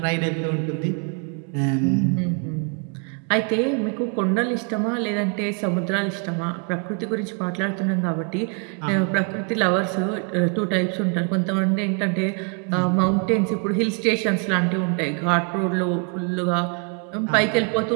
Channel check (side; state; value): left; quieter; 37.6 dB